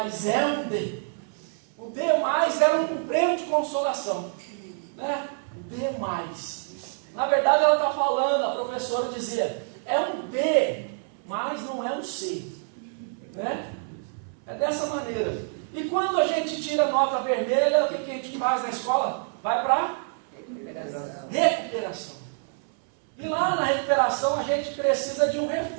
é um D. O D+ era um prêmio de consolação, né? O D+. Na verdade ela está falando, a professora dizia, é um B, mas não é um C, né? É dessa maneira. E quando a gente tira nota vermelha, o que a gente faz na escola? Vai para recuperação. E lá na recuperação a gente precisa de um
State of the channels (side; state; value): left; silent; 58 dB below the other